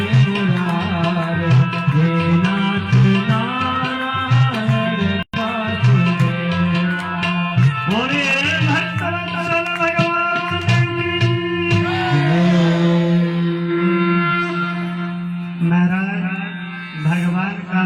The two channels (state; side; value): identical; both; correlation 1.00